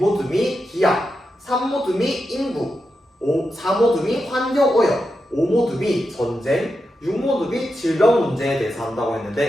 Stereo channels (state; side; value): normal; both; correlation 0.88